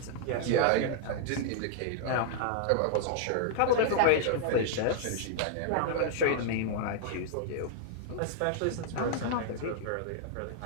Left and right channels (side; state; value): both; different; correlation -0.01